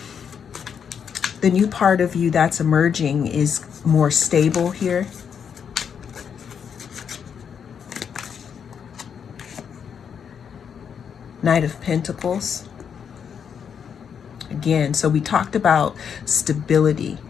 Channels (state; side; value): quieter; right; 7.4 dB